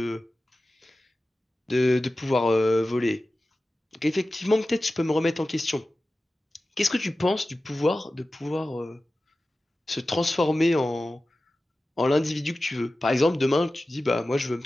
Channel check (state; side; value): normal; both; correlation 0.95